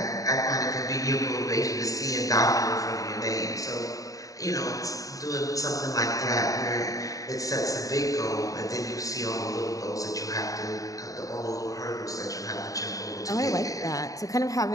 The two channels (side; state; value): right; late; 0.16 ms